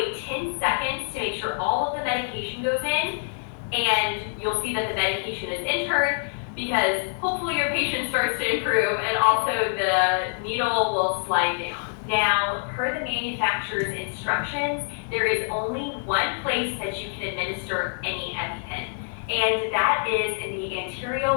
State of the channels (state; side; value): silent; right; 61 dB below the other